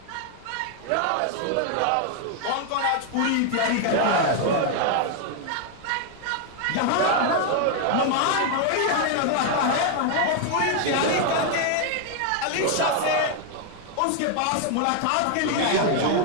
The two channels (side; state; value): both; different; correlation 0.00